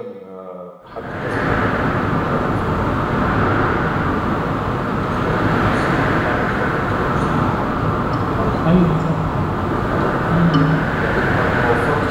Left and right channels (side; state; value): both; identical; correlation 1.00